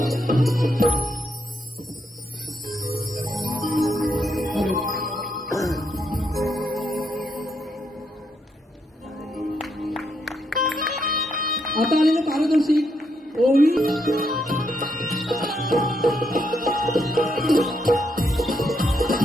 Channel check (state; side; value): normal; both; correlation 0.78